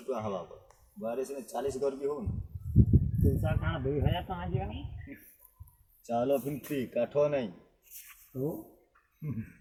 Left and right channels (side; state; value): both; identical; correlation 1.00